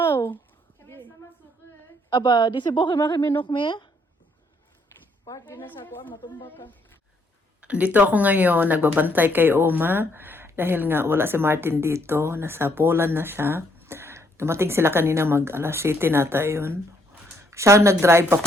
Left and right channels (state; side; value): normal; both; correlation 0.70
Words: Aber diese Woche machen wir noch mehr? Park din na sa kuan, matumba ka. Dito ako ngayon, nagbabantay kay Oma. Dahil nga wala si Martin dito. Nasa Poland na siya. Dumating sila kanina alas 7 nata yun. Siya nag-drive